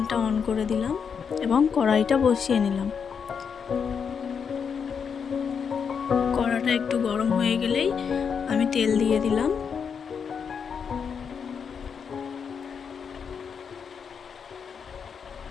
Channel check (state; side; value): quieter; right; 6.6 dB